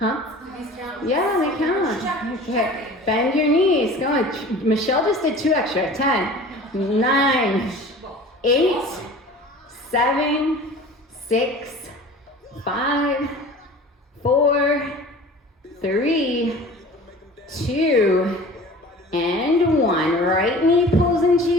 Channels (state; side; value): normal; both; correlation 0.42